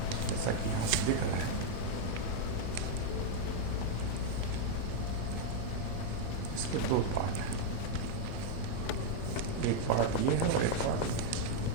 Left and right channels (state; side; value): different; both; correlation 0.00